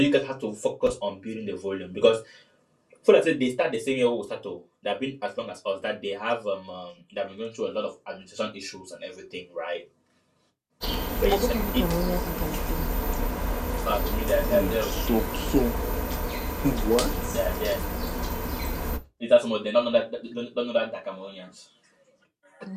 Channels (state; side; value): identical; both; correlation 1.00